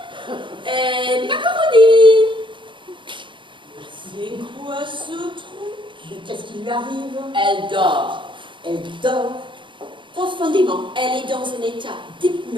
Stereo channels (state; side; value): late; left; 0.24 ms